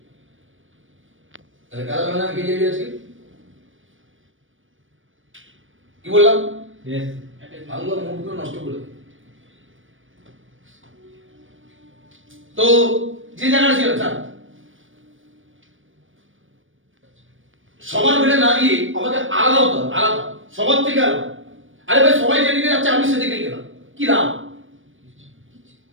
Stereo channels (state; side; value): late; left; 0.57 ms